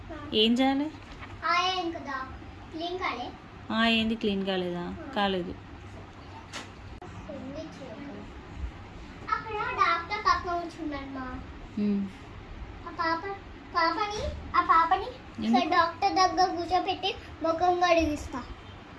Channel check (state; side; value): identical; both; correlation 1.00